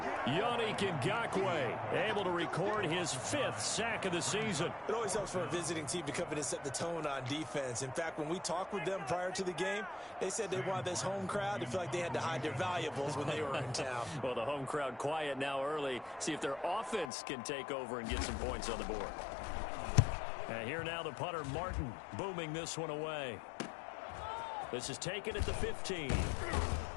Yannick Ngakoue able to record his 5th sack of the season. It always helps for a visiting team to come in and set the tone on defense. In fact, when we talked with them prior to the game, they said they wanted this home crowd to feel like they had to hide their valuables when they were in town. Well, the home crowd quiet now early. See if their offense can take over and get some points on the board. And here now the punter, Martin, booming this one away. This is taken at the 15.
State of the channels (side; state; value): right; drops out; at 17.1 s